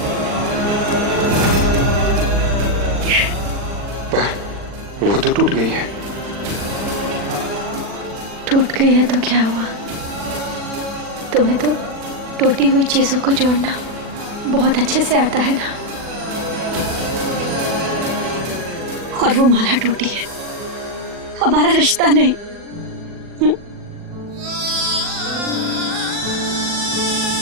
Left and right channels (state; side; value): late; left; 40 ms